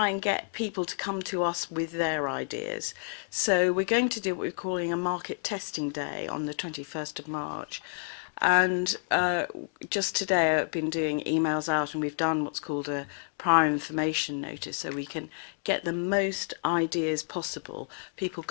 and get people to come to us with their ideas. So we're going to do what we're calling a market testing day on the 21st of March. And just today I've been doing emails out, and we've done what's called a prior information notice, so we can get the most ideas possible, people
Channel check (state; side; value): silent; right; digital silence